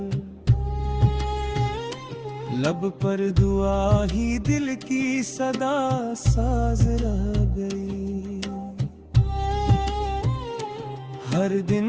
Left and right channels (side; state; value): both; identical; correlation 1.00